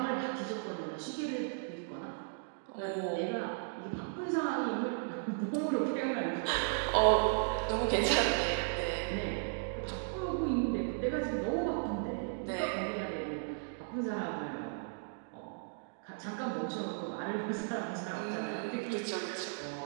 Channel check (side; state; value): left; silent; digital silence